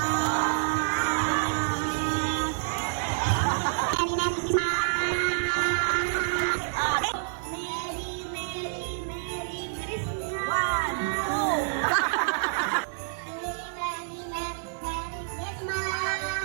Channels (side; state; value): left; silent; 59 dB below the other